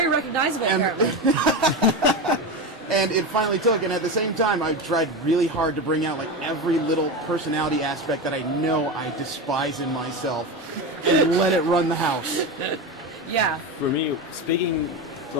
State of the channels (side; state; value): both; normal; correlation 0.19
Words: recognizable, apparently. And it finally took, and at the same time, I tried really hard to bring out like every little personality aspect that I know I despise in myself, and let it run the house. Yeah. For me, speaking,